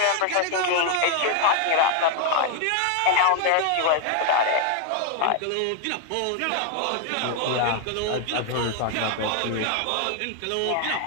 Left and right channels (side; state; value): both; different; correlation 0.00